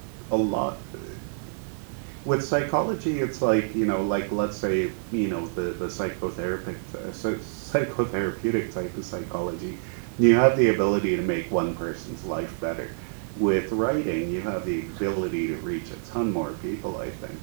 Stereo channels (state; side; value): silent; left; digital silence